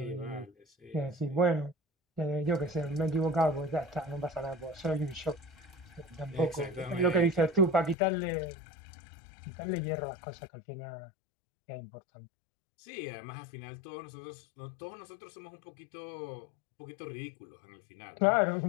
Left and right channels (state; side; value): drops out; right; at 8.0 s